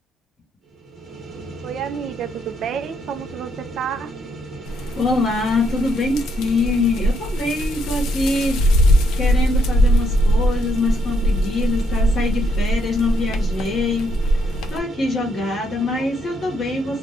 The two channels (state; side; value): normal; both; correlation 0.74